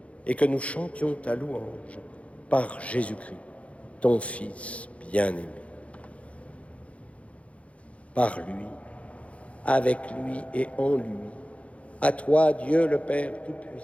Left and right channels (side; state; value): right; late; 0.064 ms